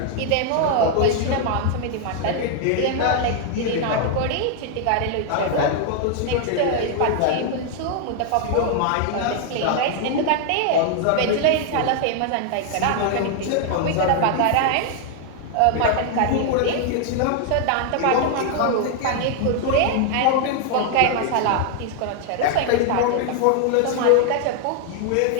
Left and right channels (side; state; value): both; different; correlation 0.00